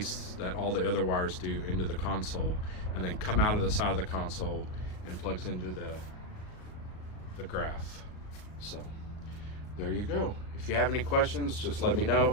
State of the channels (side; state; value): right; late; 38 ms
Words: that all the other wires do, into the console, and then come out of the side of the console and plugs into the graph. So there you go. If you have any questions, just let me